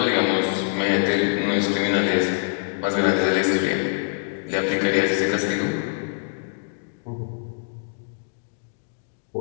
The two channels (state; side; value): silent; right; digital silence